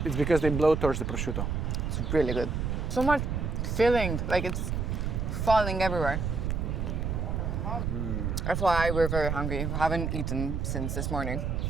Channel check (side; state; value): right; noise; rumble, 1 dB below the sound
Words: It's because they blow towards the prosciutto. It's really good. So much filling, like it's falling everywhere. That's why we're very hungry. We haven't eaten since this morning.